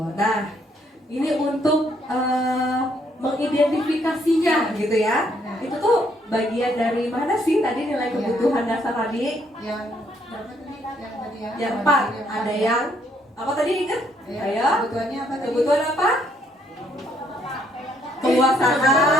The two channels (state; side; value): normal; both; correlation 0.69